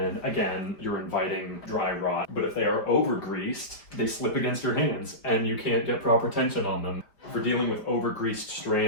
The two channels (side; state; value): right; late; 5.0 ms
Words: again, you're inviting dry rot. But if they are over-greased, they slip against your hands and you can't get proper tension on them. For dealing with over-greased